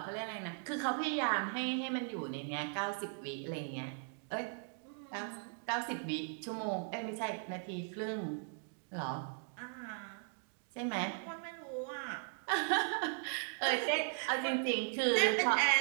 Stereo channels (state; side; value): silent; left; 52 dB below the other